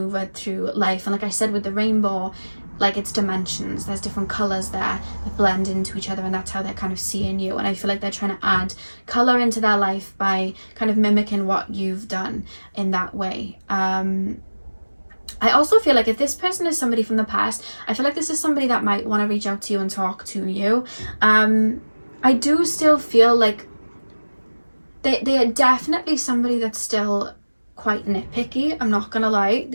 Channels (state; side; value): inverted; both; correlation -1.00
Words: through life. And like I said with the rainbow, like it's dimensions. There's different colors there that blend into each other, and that's how they're kind of seeing you. And I feel like they're trying to add color into their life by kind of mimicking what you've done in that way. I also feel like if this person is somebody from the past, I feel like this is somebody that might want to reach out to you and talk to you. I do still feel like they are definitely somebody that's still quite nitpicky. I'm not gonna lie.